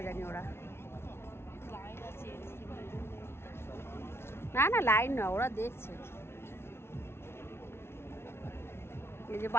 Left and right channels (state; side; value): late; right; 0.12 ms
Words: জানি ওরা। না না লাইন না, ওরা দেখছে। এই যে